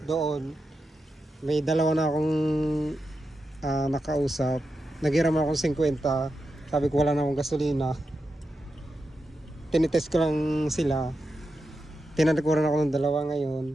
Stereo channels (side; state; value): both; normal; correlation 0.89